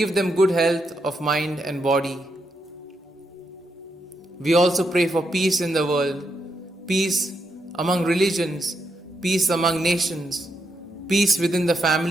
them good health of mind and body. We also pray for peace in the world, peace among religions, peace among nations, peace within the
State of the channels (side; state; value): both; normal; correlation 0.81